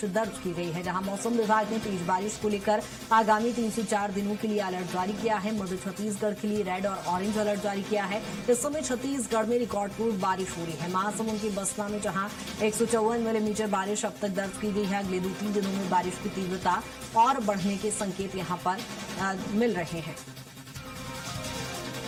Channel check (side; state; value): both; identical; correlation 1.00